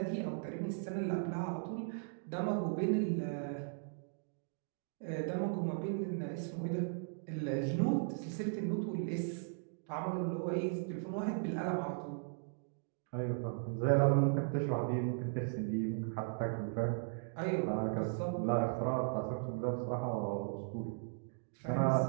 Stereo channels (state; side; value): silent; left; digital silence